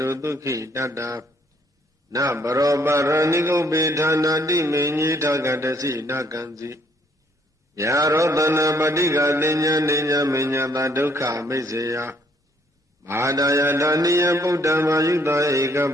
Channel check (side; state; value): both; normal; correlation 0.66